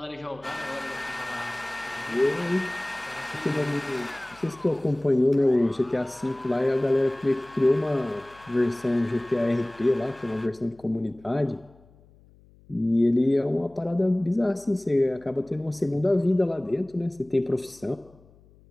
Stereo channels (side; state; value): left; noise; hum, 27 dB below the sound